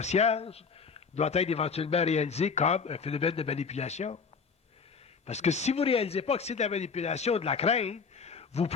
doit être éventuellement réalisé comme un phénomène de manipulation. Parce que si vous ne réalisez pas que c'est de la manipulation, de la crainte, vous ne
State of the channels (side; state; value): right; quieter; 5.5 dB